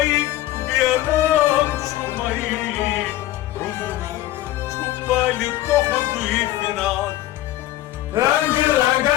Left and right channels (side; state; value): right; quieter; 15.2 dB